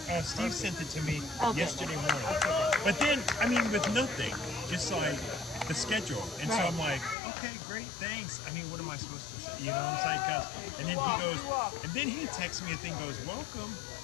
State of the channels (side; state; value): right; drops out; at 7.2 s